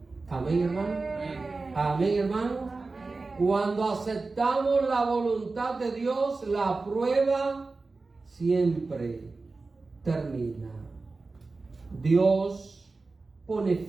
Amén, hermano. Amén, hermano. Cuando aceptamos la voluntad de Dios, la prueba siempre termina. Dios pone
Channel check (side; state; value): left; quieter; 3.8 dB